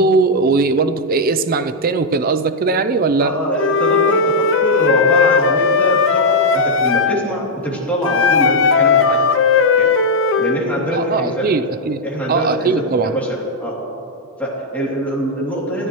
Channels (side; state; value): both; normal; correlation -0.03